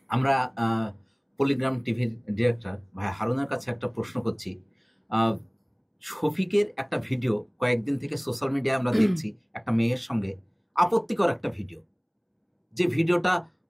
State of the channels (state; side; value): identical; both; correlation 1.00